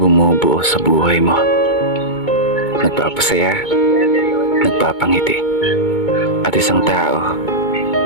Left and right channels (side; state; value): right; late; 2.2 ms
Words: sa buhay mo. Nagpapasaya, nagpapangiti. At isang tao